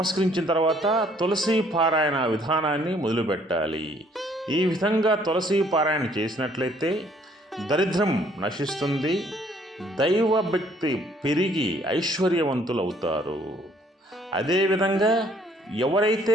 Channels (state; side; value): normal; both; correlation 0.62